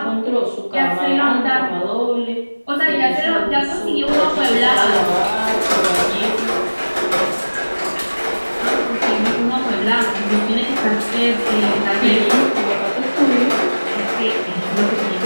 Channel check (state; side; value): inverted; both; correlation -1.00